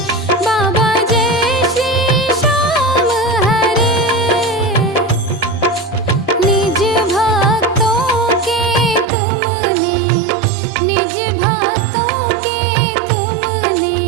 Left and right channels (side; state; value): left; drops out; at 9.1 s